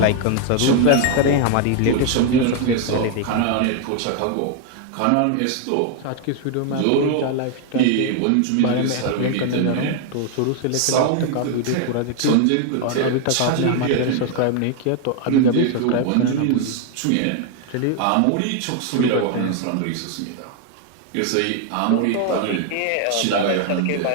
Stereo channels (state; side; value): different; both; correlation 0.00